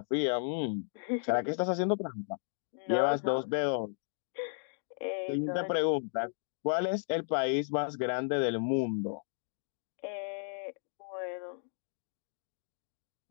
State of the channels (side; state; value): right; silent; digital silence